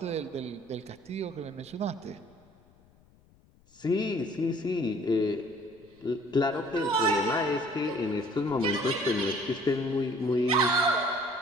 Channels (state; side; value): noise; left; rumble, 30 dB below the sound